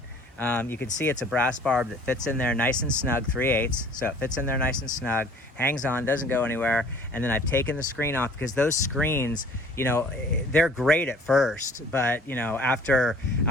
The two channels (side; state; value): both; normal; correlation 0.52